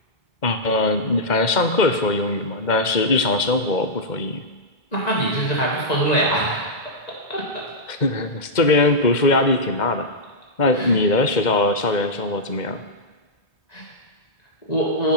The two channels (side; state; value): right; late; 2.1 ms